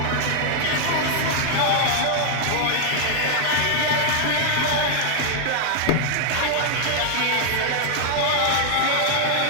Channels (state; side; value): different; both; correlation 0.00